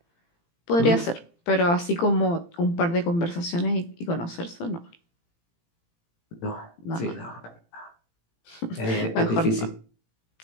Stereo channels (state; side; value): late; right; 18 ms